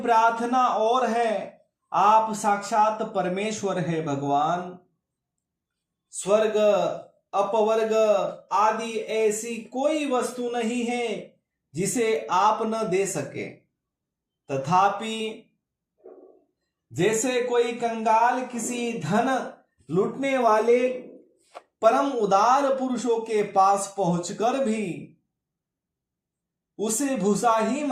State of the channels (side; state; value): both; identical; correlation 1.00